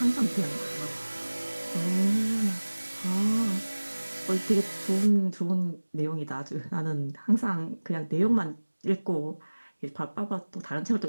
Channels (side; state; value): both; inverted; correlation -1.00